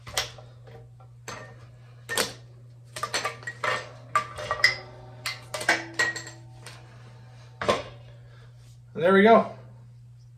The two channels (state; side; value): identical; both; correlation 1.00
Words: And there we go.